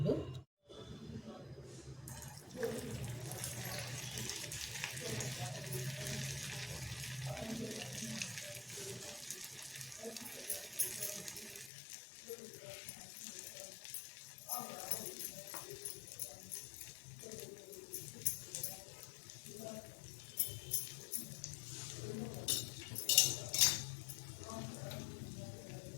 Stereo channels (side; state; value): right; drops out; at 11.7 s